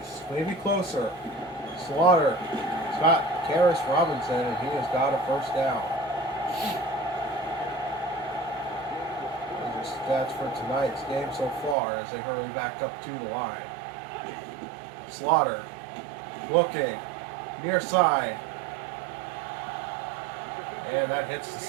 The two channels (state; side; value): drops out; left; at 11.8 s